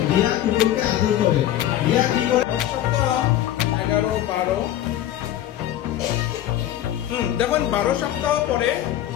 রিয়া কুকুরকে আদর করে, রিয়া কি করে? সপ্তাহ 11, 12 দেখুন 12 সপ্তাহ পরে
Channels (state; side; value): quieter; right; 12.4 dB